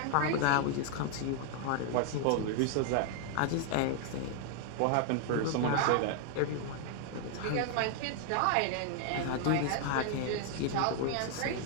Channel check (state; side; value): different; both; correlation 0.00